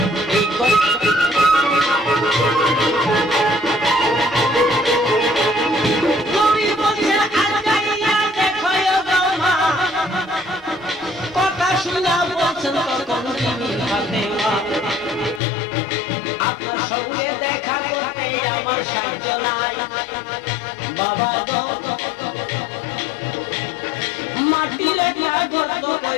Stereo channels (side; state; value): right; drops out; at 15.4 s